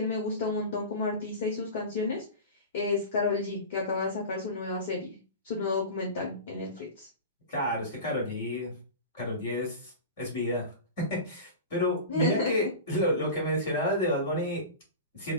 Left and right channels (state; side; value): inverted; both; correlation -0.30